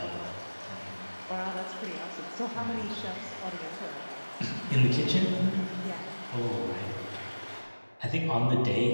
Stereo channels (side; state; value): both; inverted; correlation -1.00